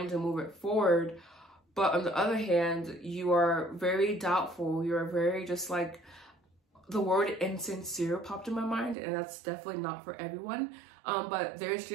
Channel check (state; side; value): drops out; left; at 9.0 s